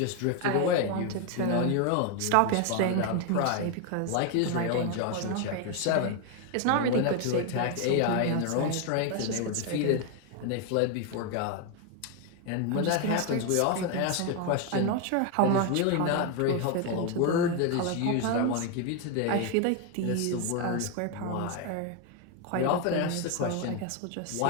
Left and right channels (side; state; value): both; different; correlation 0.01